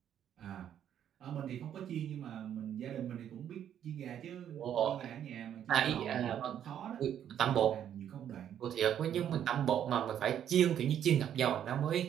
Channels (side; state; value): left; quieter; 9.8 dB